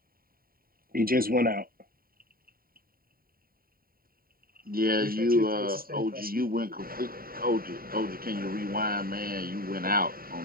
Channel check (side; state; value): left; late; 0.43 ms